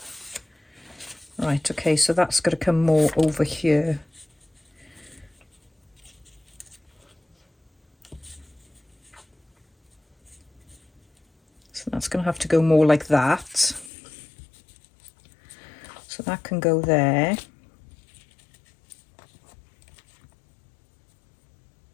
Right, okay, so that's got to come more over here. So that's going to have to go more like that. So that can go there.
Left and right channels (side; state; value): right; drops out; at 13.9 s